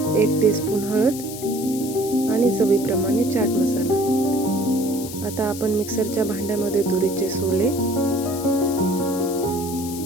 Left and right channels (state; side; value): noise; left; hiss, 11 dB below the sound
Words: 1 टीस्पून हळद आणि चवीप्रमाणे चाट मसाला. आता आपण मिक्सरच्या भांड्यामध्ये तुरीचे सोले,